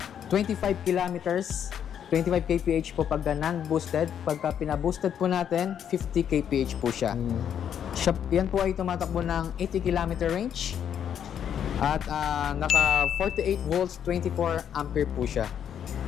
25 kilometers. 25 kph po pagka non-boosted. Pagka pina-boosted po natin, 50 kph po siya. Yan po ay tumatakbo ng 80 km range. At naka 48 volts, 24 ampere po siya.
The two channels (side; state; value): right; quieter; 8.9 dB